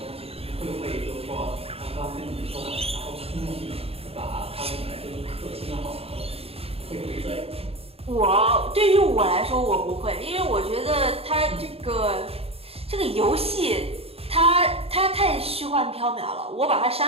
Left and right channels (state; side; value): late; left; 0.28 ms